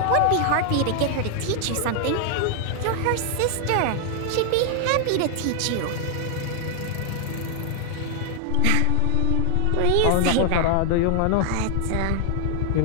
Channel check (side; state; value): both; different; correlation 0.00